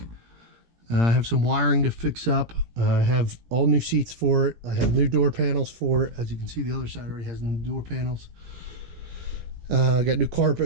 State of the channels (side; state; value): left; late; 17 ms